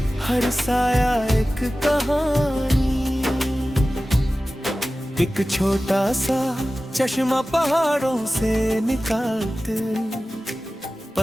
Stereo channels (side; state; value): both; normal; correlation 0.96